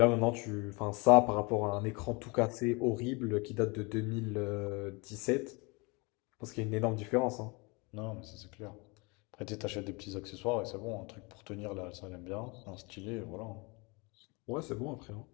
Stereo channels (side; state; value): right; quieter; 28.2 dB